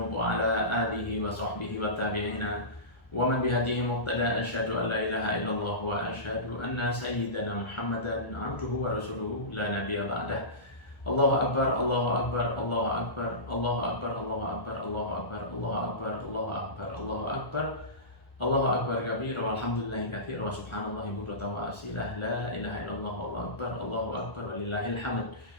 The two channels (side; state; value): right; late; 1.4 ms